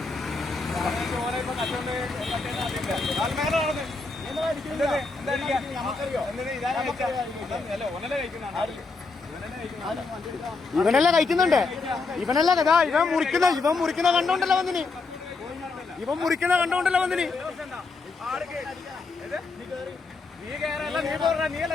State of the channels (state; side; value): quieter; right; 4.0 dB